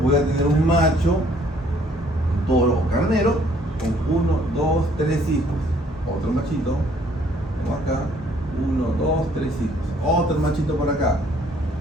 a tener un macho, un toro o carnero, con 1, 2, 3 hijos. Otro machito, tengo acá, 1, 2, 3 hijos. Otro machito por acá,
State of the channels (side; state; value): both; normal; correlation 0.62